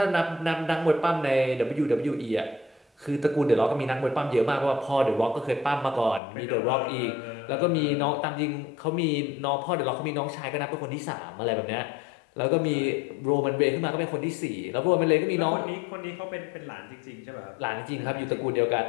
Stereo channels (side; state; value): right; drops out; at 6.2 s